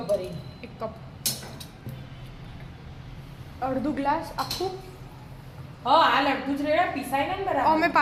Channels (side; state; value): both; identical; correlation 1.00